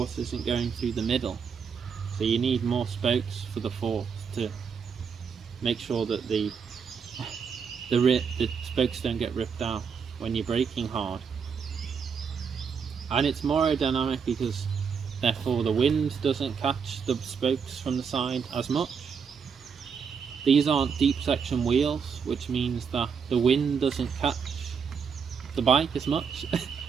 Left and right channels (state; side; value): quieter; left; 6.4 dB